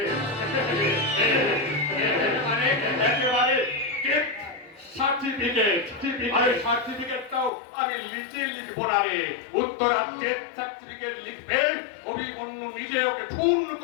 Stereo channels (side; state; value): right; drops out; at 7.5 s